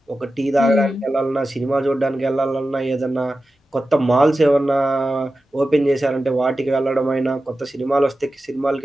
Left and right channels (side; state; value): both; normal; correlation 0.93